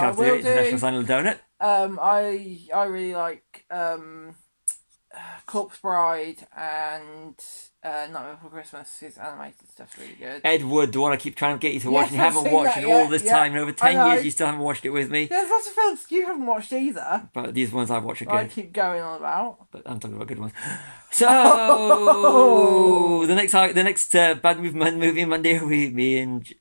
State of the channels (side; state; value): both; inverted; correlation -1.00